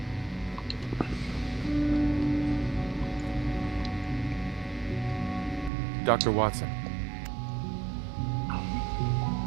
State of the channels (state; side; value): drops out; left; at 5.7 s